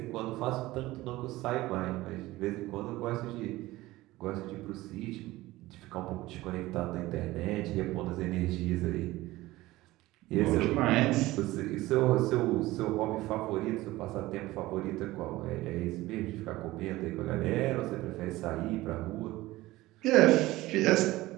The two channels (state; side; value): quieter; left; 18.1 dB